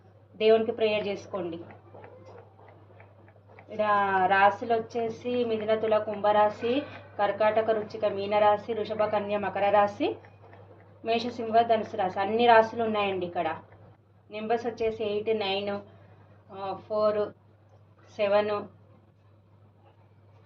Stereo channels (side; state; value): both; identical; correlation 1.00